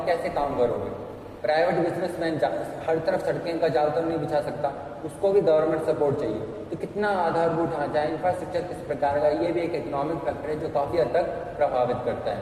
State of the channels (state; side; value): identical; both; correlation 1.00